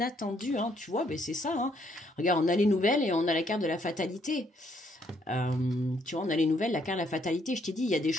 Hein, tu vois, ben c'est ça. Hein. Regarde, on a les nouvelles et on a la carte de la fatalité. Tu vois, on a les nouvelles, la carte de la fatalité. Je t'ai dit, il y a des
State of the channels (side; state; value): both; normal; correlation 0.70